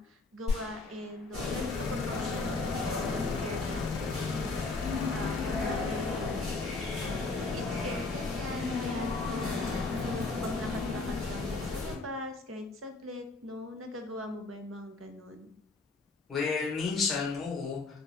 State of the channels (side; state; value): right; quieter; 3.5 dB